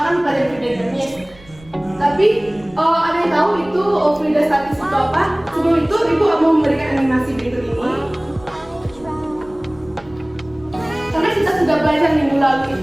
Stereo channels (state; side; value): noise; right; rumble, 24 dB below the sound